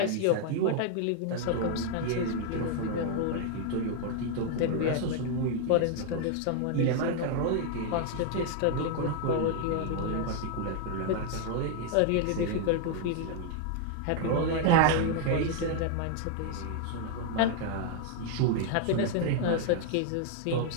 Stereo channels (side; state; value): both; different; correlation 0.00